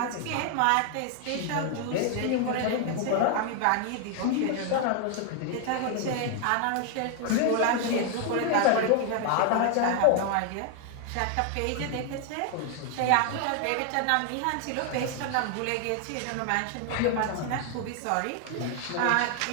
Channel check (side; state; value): both; different; correlation 0.00